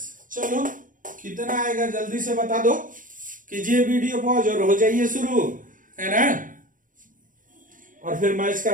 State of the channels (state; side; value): late; left; 0.39 ms